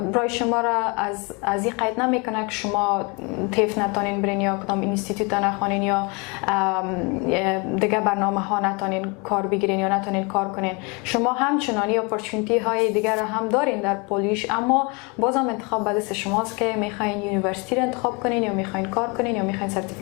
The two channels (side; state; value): right; quieter; 30.1 dB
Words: برای شما را از این قید نمیکنه که شما تیف نتانین برین یا کدام اینستیتوت نخوانین یا دیگه برنامه ها نتانین کار بگیرین یا نتانین کار کنین. شما همچنانی اپورتونیتی های دیگر را هم دارین در پولیش، اما بازم انتخاب به دست شماست که میخواین یونیورسیتی را انتخاب کنین یا میخواین کار کنین یا میخواین